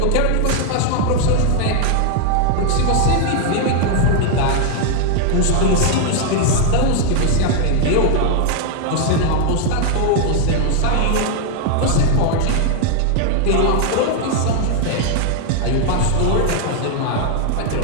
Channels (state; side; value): different; both; correlation 0.00